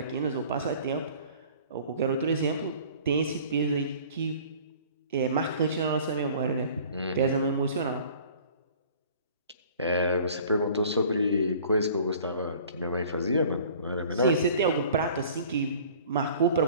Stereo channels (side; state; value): both; inverted; correlation -0.49